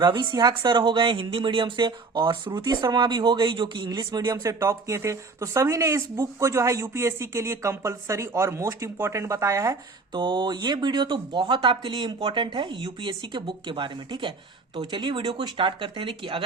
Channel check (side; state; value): left; quieter; 4.1 dB